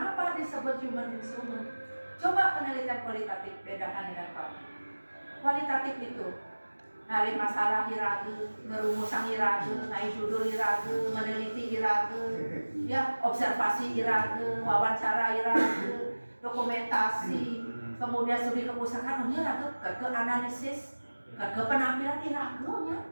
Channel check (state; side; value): inverted; both; correlation -1.00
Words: disebut human instrument? Coba penelitian kualitatif bedakan dengan kualitatif. Kualitatif itu nyari masalah irage, ngerumusan irage, naik judul irage, meneliti irage, ya observasi irage, wawancara irage, dokumentasi, kemudian studi kepustakaan, irage, ke analisis, ke penampilan irage-nya.